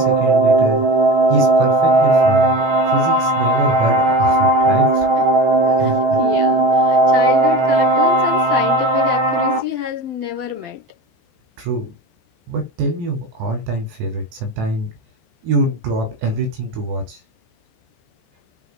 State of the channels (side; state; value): left; late; 14 ms